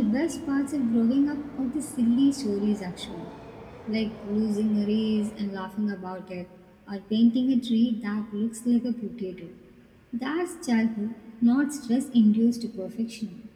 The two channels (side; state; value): both; identical; correlation 1.00